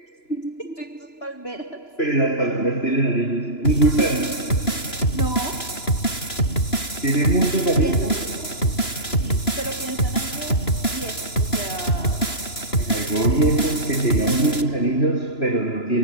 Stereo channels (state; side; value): late; right; 2.9 ms